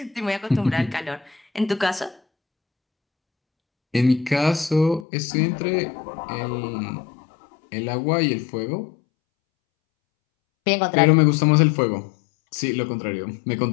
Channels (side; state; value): right; drops out; at 5.1 s